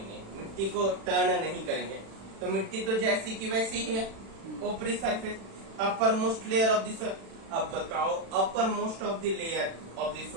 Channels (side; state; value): left; late; 36 ms